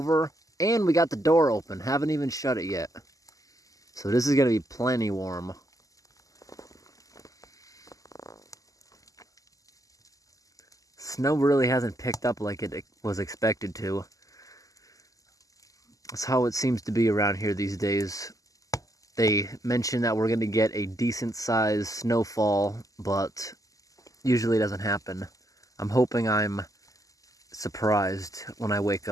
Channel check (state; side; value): late; right; 0.17 ms